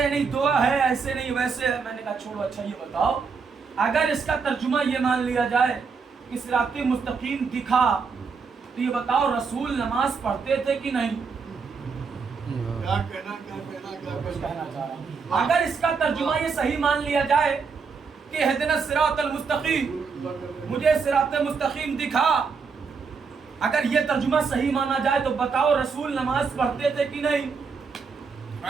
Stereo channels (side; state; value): left; quieter; 5.3 dB